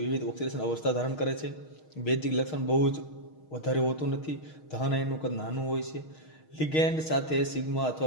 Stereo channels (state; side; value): late; right; 6.4 ms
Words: વિવિધ ઓક્સિડેશન અવસ્થા ધારણ કરે છે. બેઝિક લક્ષણ બહુ જ વધારે હોતું નથી. ધન આયનનું કદ નાનું હોય છે. લિગેન્ડ સાથે સિગ્મા